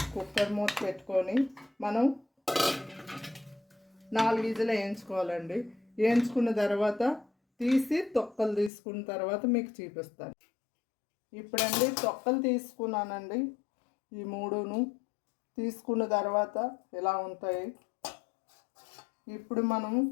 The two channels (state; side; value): drops out; right; at 8.7 s